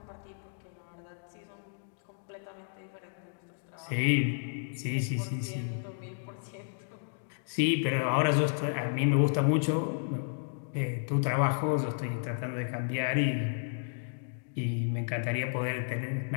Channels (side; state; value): right; silent; digital silence